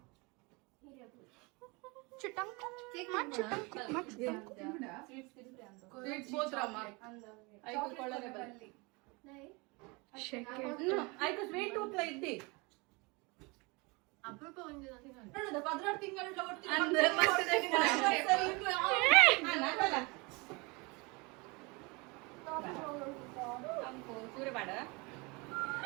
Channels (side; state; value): left; quieter; 27.4 dB